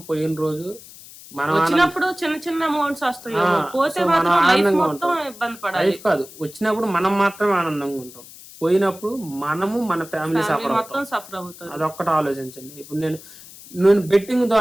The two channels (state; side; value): noise; left; hiss, 18 dB below the sound